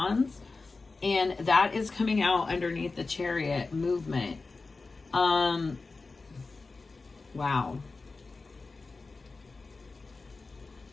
And that is coming out underneath the Chariot movement. Wow.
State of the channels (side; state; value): right; quieter; 3.8 dB